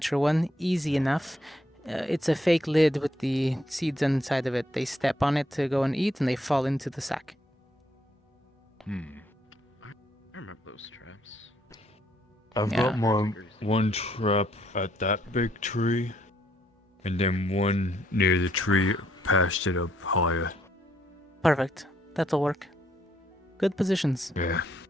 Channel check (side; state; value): both; normal; correlation 0.71